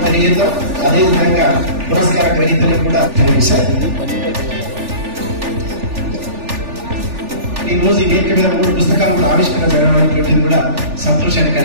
తెలియజేద్దాం. అదేవిధంగా పురస్కార గ్రహీతలకు కూడా కనిపిస్తారు. ఈ రోజు ఈ వేదిక మీద 3 పుస్తకాలు కూడా ఆవిష్కరణ జరగడం కూడా సంతోషాన్ని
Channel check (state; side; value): late; left; 3.4 ms